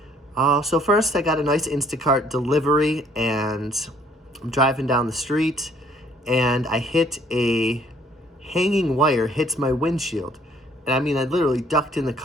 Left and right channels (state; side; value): normal; both; correlation 0.61